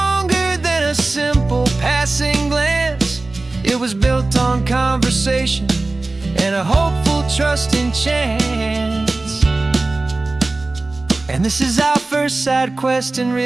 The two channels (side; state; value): left; quieter; 3.2 dB